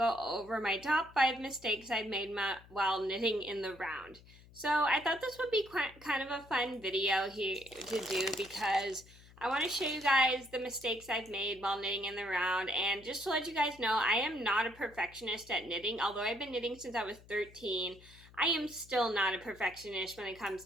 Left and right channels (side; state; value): left; noise; hum, 23 dB below the sound